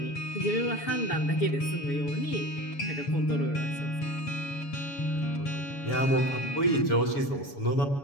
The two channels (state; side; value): late; right; 7.2 ms